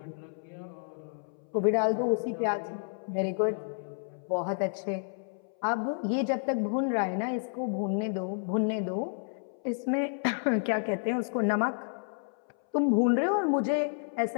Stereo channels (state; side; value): silent; right; 57 dB below the other